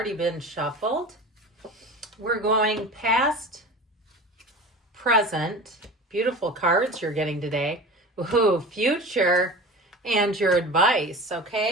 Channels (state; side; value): normal; both; correlation 0.34